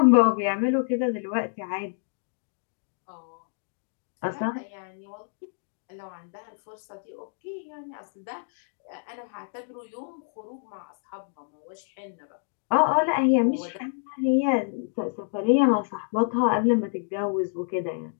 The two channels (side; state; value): right; silent; digital silence